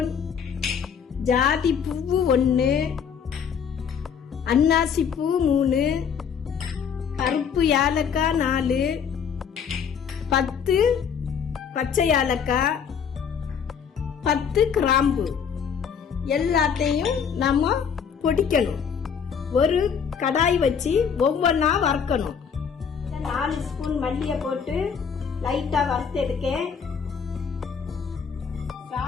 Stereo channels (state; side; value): quieter; right; 7.0 dB